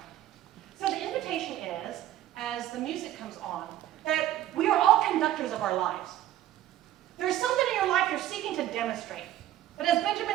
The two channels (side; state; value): left; quieter; 13.2 dB